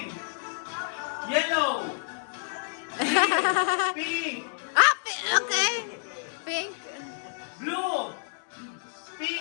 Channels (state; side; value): silent; right; digital silence